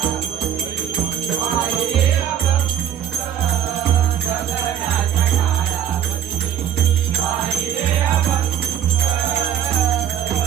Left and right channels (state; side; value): quieter; left; 9.8 dB